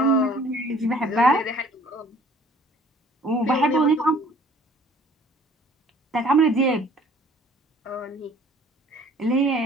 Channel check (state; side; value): normal; both; correlation 0.54